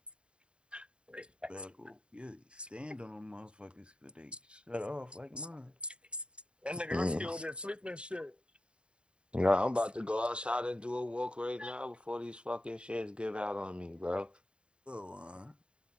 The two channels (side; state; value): left; late; 0.053 ms